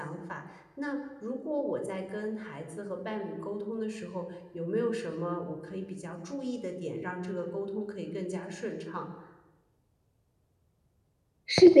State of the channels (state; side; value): identical; both; correlation 1.00